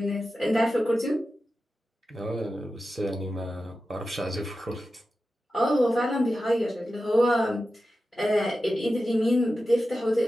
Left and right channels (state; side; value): normal; both; correlation 0.92